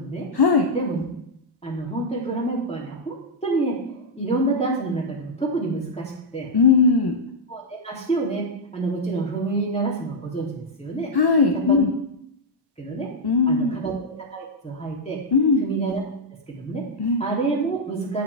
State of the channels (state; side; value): normal; both; correlation -0.03